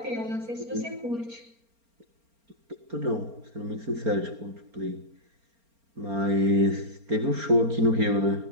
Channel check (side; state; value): left; late; 4.3 ms